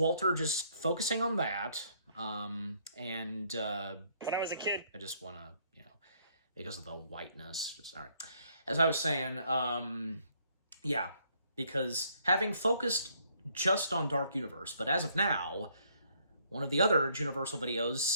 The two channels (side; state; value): both; inverted; correlation -0.68